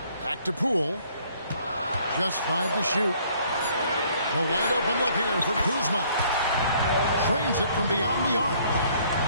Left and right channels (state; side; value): inverted; both; correlation -0.61